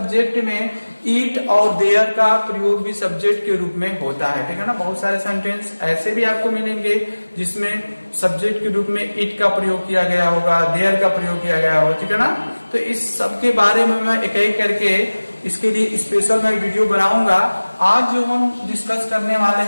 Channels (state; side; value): inverted; both; correlation -1.00